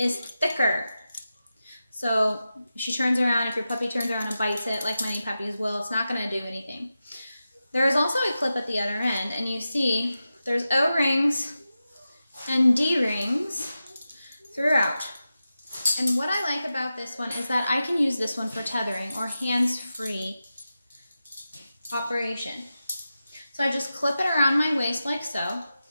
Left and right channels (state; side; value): inverted; both; correlation -0.92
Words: thicker. So if she turns around, if your puppy turns around and bites it, like many puppies will, it's not going to do anything. There is also a clip at the other end, and you see there's O-rings and D-rings throughout. And what I like about this one is that I can use this one for tethering or hands-free operation. So I just clip it around my waist like so,